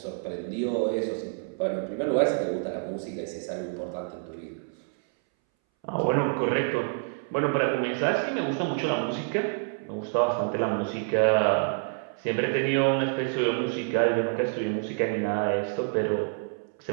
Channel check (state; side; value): silent; left; 60 dB below the other